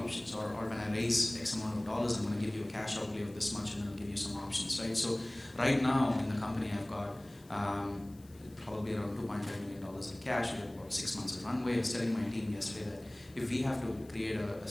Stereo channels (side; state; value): left; noise; hiss, 26 dB below the sound